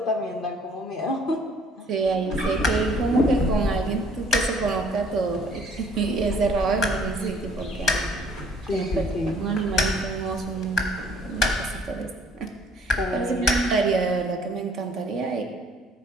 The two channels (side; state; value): both; normal; correlation 0.59